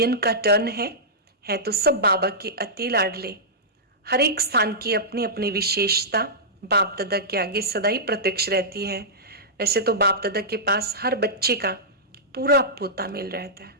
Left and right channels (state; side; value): normal; both; correlation -0.14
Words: का टर्न है तो सब बाबा के अति लाडले। हर एक स्थान की अपनी अपनी विशेषता बाप दादा के आगे सदा ही प्रत्यक्ष रहती है। वैसे तो बाप दादा के पास हर बच्चे का पूरा पोता मिल रहता है।